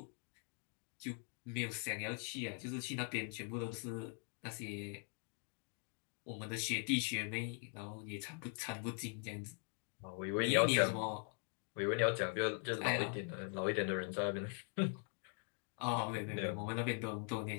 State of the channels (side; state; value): right; quieter; 38.8 dB